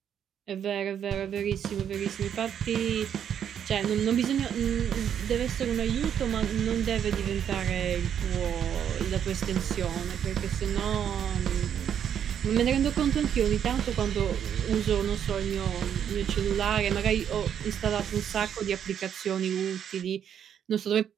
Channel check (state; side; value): quieter; left; 8.9 dB